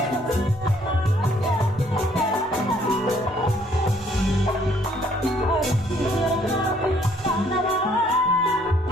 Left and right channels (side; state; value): both; normal; correlation 0.64